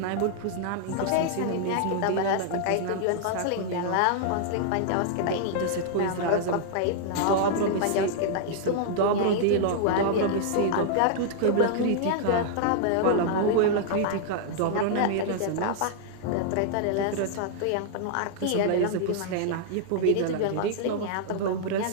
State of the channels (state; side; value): different; both; correlation -0.01